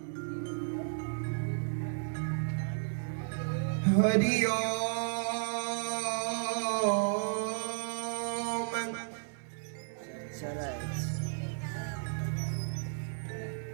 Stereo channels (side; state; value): left; silent; 55 dB below the other